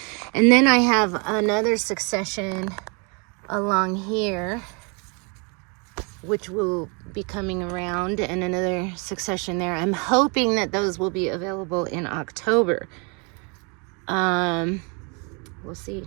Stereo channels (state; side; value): quieter; left; 33.5 dB